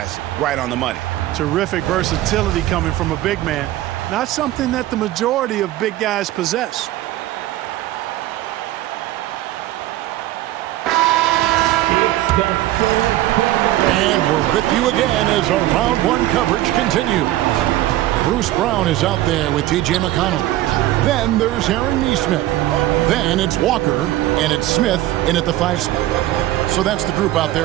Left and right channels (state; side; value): quieter; left; 15.2 dB